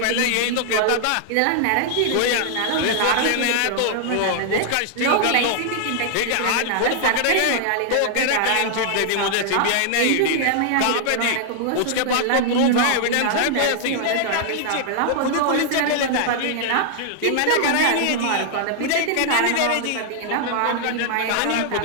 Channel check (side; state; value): both; different; correlation 0.00